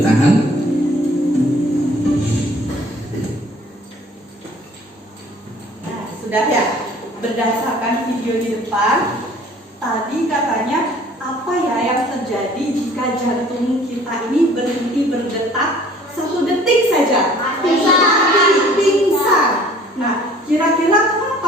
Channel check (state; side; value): normal; both; correlation 0.53